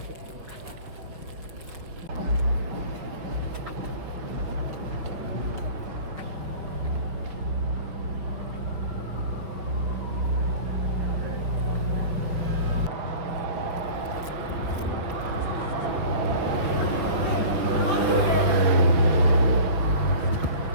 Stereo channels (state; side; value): late; left; 5.5 ms